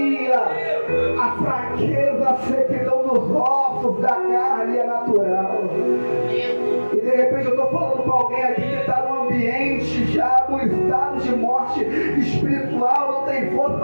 a fraqueza, a sequidão dos ossos, da carne é natural. E de repente eu estou falando para alguém aqui que está num ambiente já no estado de morte espiritual, não tem força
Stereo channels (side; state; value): both; inverted; correlation -1.00